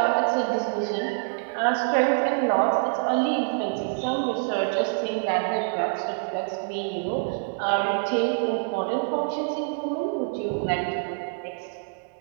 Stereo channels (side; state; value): left; silent; 61 dB below the other